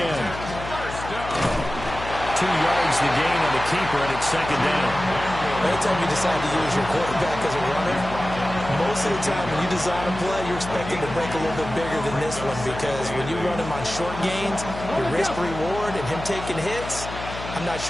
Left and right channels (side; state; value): left; noise; hum, 10 dB below the sound